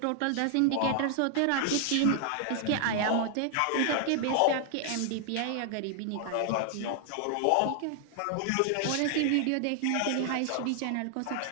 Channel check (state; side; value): different; both; correlation 0.00